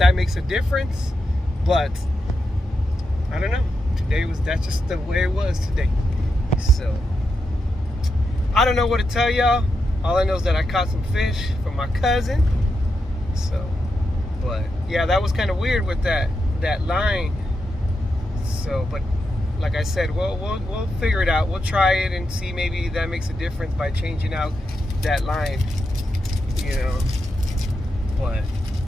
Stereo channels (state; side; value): normal; both; correlation 0.86